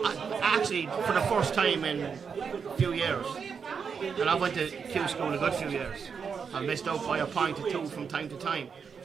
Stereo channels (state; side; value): quieter; left; 6.2 dB